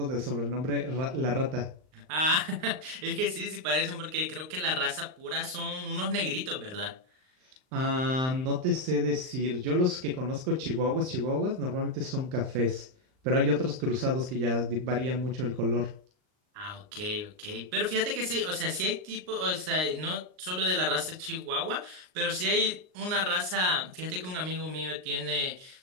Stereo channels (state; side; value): late; left; 39 ms